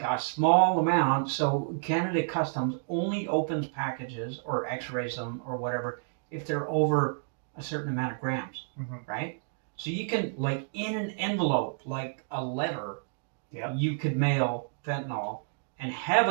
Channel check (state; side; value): silent; left; digital silence